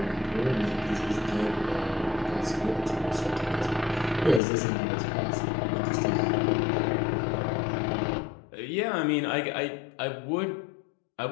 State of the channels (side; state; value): right; drops out; at 4.4 s